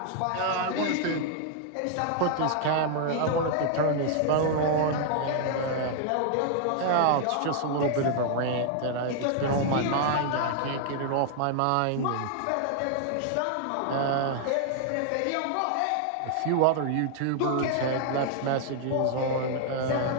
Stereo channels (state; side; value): different; both; correlation 0.00